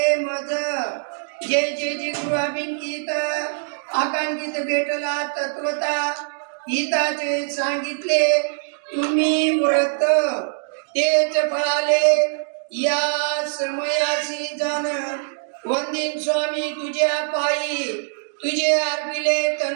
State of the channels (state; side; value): silent; left; digital silence